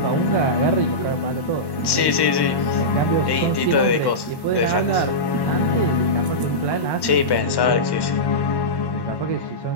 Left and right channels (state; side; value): late; right; 1.1 ms